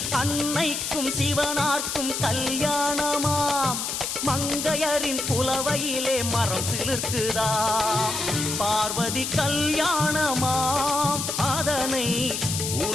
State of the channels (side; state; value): left; noise; hiss, 3 dB below the sound